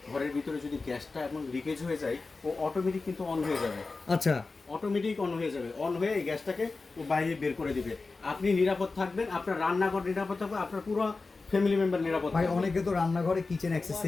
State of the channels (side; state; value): right; quieter; 3.9 dB